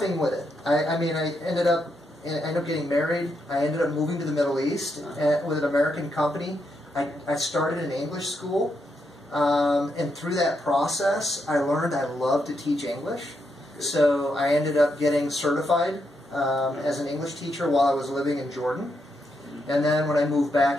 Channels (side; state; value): both; normal; correlation 0.80